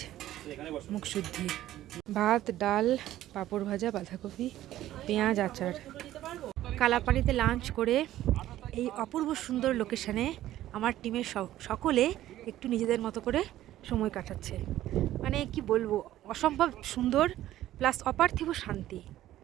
মুখশুদ্ধি, ভাত, ডাল, পাঁপড় ভাজা, বাঁধাকপি, পেঁয়াজ, আচার। কালাপানিতে লাঞ্চ করে এই অপূর্ব সুন্দর লোকেশানে আমার টিমের সকলে একটু নিজেদের মতো করে সময় কাটাচ্ছে। মানে কি বলবো, অসম্ভব সুন্দর প্লাস অপার্থিব শান্তি।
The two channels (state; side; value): quieter; left; 13.8 dB